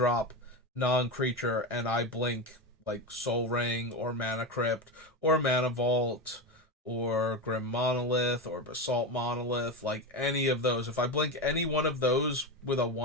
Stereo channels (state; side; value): normal; both; correlation 0.18